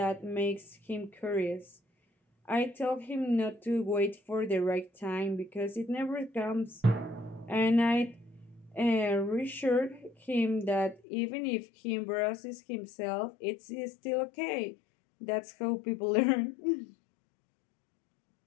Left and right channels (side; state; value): right; drops out; at 11.0 s